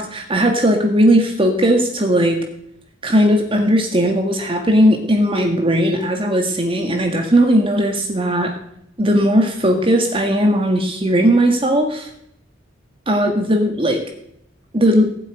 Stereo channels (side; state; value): both; normal; correlation 0.68